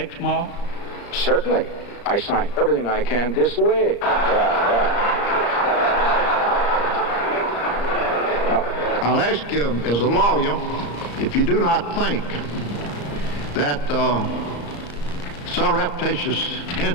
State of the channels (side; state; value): right; late; 34 ms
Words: Certainly. I signed everything I can this way. I'll ask you, as a lawyer, if you do not think that surreptitious